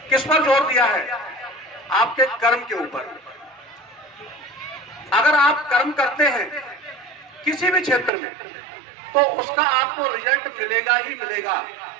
किस पर जोर दिया है? आपके कर्म के ऊपर। अगर आप कर्म करते हैं किसी भी क्षेत्र में, तो उसका आपको रिजल्ट मिलेगा ही मिलेगा,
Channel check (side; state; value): left; drops out; at 8.1 s